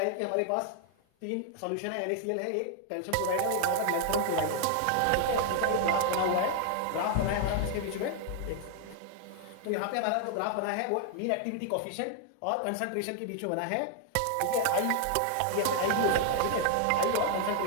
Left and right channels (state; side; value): different; both; correlation 0.00